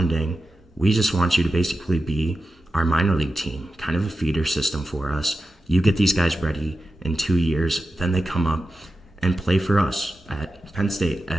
We just want you to basically be our minor league team, kind of a feeder system for us. You get these guys ready in 2 years, then they come up and play for us at Penn State,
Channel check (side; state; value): both; normal; correlation 0.91